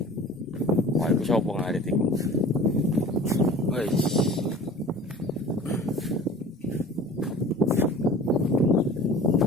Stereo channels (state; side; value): normal; both; correlation 0.43